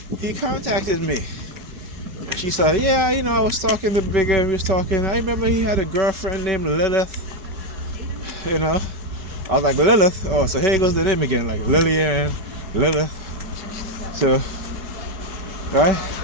he contacted me. And she said, yeah, I was talking to Bigger, I remember he had a girlfriend named Lilith, I was like, Lilith? Oh, so here goes the name again, like Lillian, Lilith. So, right?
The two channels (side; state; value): left; late; 5.2 ms